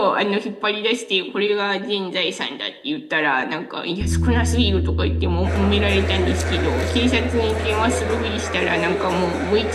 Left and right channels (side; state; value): both; identical; correlation 1.00